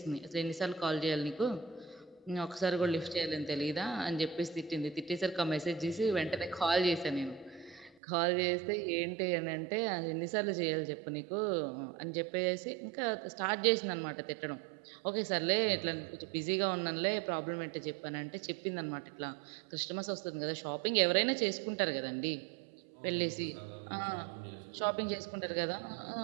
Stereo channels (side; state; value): left; drops out; at 8.0 s